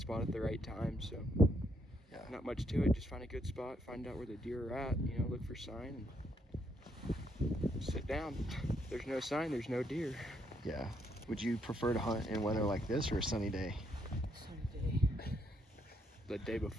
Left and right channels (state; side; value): normal; both; correlation 0.74